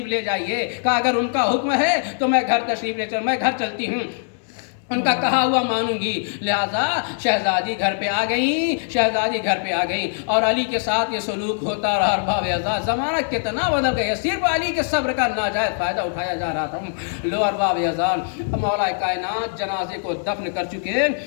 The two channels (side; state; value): right; silent; 64 dB below the other